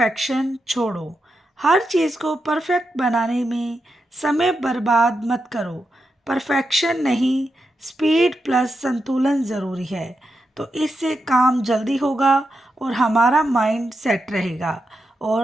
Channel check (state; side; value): normal; both; correlation 0.86